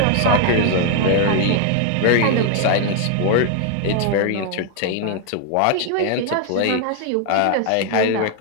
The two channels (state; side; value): different; both; correlation 0.00